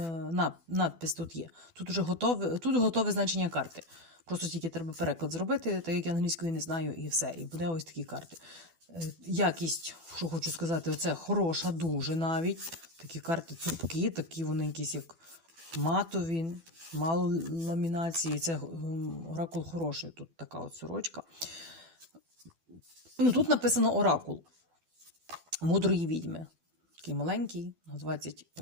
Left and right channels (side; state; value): left; late; 12 ms